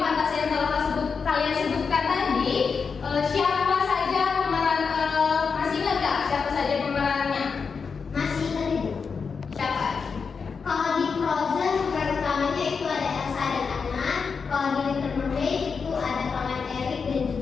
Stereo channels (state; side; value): quieter; right; 5.5 dB